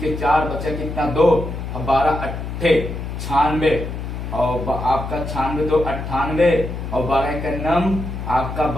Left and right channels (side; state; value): left; noise; hum, 6 dB below the sound